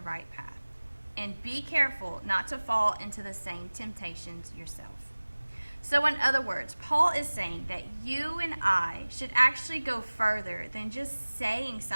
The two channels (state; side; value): inverted; both; correlation -1.00